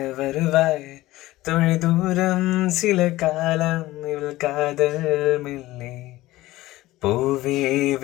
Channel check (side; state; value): right; quieter; 17.4 dB